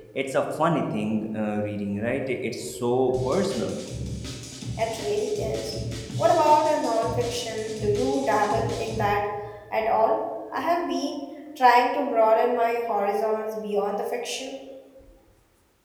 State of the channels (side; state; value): both; identical; correlation 1.00